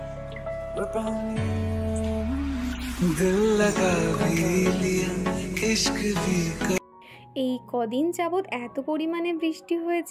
grip on you. दिल लगा भी लिया, इश्क भी कर। এই কদিন যাবৎ এত পরিমাণে বৃষ্টি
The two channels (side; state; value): both; identical; correlation 1.00